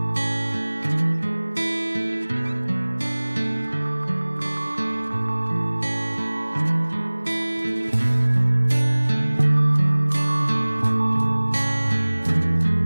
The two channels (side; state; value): both; inverted; correlation -1.00